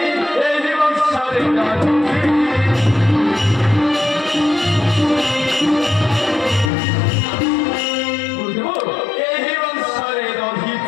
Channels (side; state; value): right; drops out; at 6.7 s